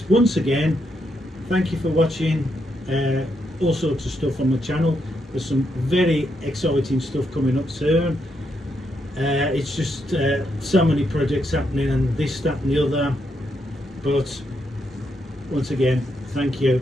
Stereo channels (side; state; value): both; normal; correlation 0.80